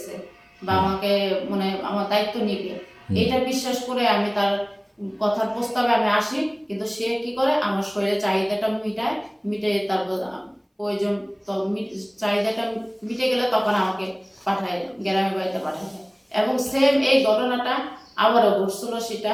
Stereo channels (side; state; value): both; identical; correlation 1.00